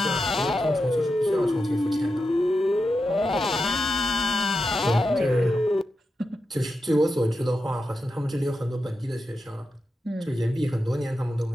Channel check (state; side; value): normal; both; correlation 0.89